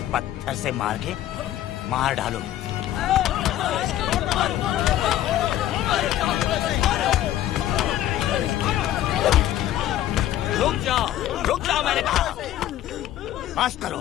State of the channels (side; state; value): right; quieter; 12.8 dB